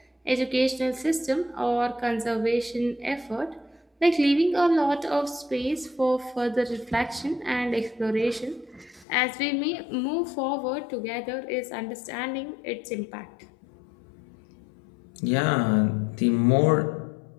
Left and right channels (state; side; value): drops out; right; at 9.1 s